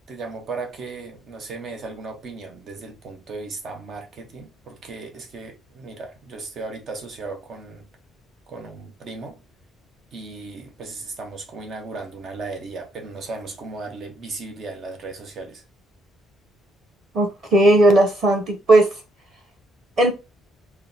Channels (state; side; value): normal; both; correlation 0.73